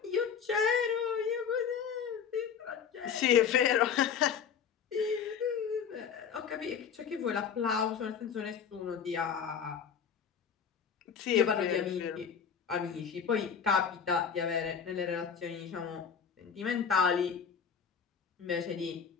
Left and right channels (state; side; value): quieter; right; 7.1 dB